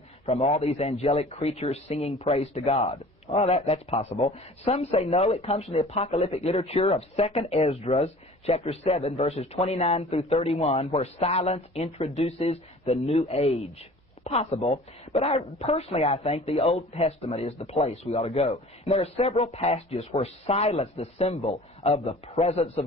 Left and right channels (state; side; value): normal; both; correlation 0.45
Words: from all these angelic creatures singing praise to God. Well, that's possible. Some say no, it comes from the apocalyptic literature of 2nd Esdras, chapter 7, verses 29 through 31, where silence introduces the new age. Possible, but personally I think the Old Testament is the place we ought to go. And there are several passages where silence, the symbol of the presence